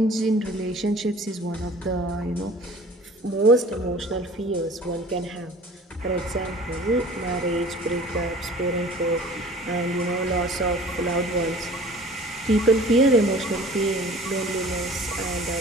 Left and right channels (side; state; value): both; normal; correlation 0.46